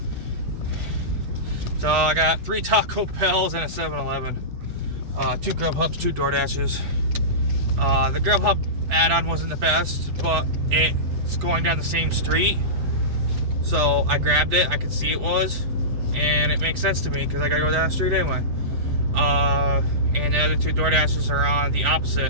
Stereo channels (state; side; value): late; left; 8.3 ms